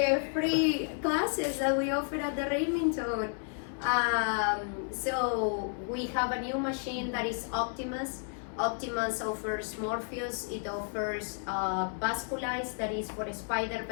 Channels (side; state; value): right; silent; 57 dB below the other